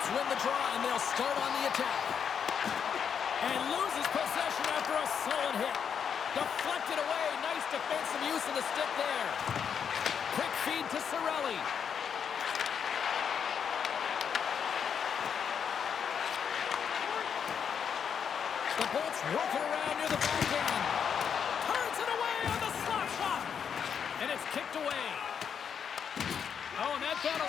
win the draw, and they'll start on the attack. And loses possession after a solid hit. Deflected away. Nice defensive use of the stick there. Quick feed to Cirelli. The Bolts working around near the back end. Turns it away on the slap shot. And it's kicked away. Oh, and that got a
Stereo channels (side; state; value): right; quieter; 7.4 dB